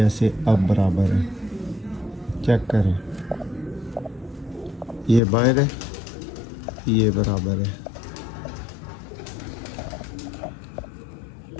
अब बराबर है, चेक करें, ये बाहर है, ये बराबर है।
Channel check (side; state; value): right; drops out; at 5.2 s